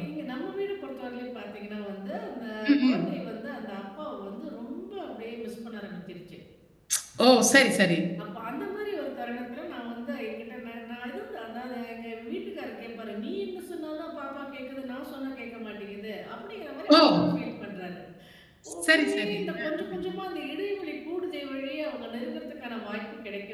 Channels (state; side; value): identical; both; correlation 1.00